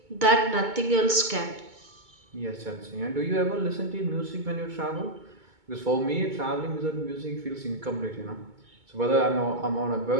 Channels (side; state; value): left; late; 2.2 ms